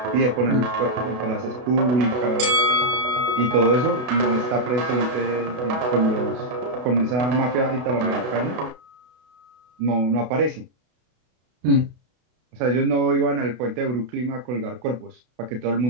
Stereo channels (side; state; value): left; late; 32 ms